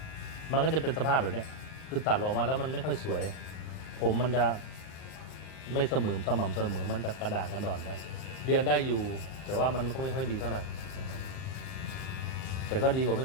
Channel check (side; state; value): right; late; 39 ms